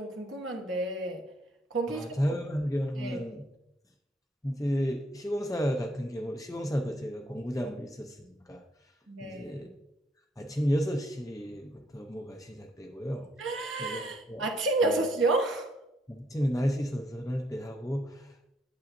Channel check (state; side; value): normal; both; correlation 0.72